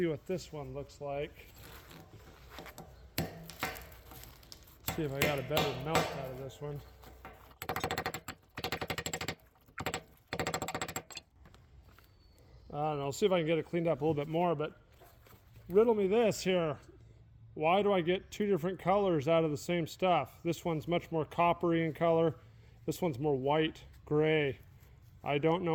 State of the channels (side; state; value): both; identical; correlation 1.00